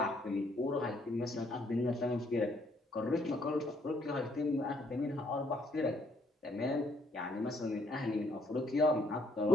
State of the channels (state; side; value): normal; both; correlation 0.70